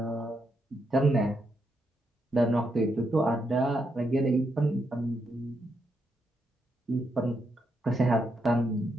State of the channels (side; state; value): both; normal; correlation 0.81